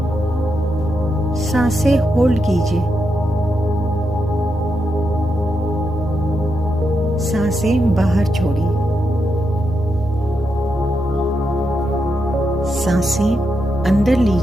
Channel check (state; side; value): normal; both; correlation 0.84